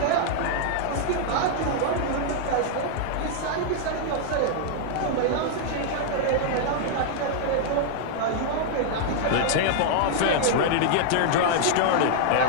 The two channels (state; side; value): different; both; correlation -0.01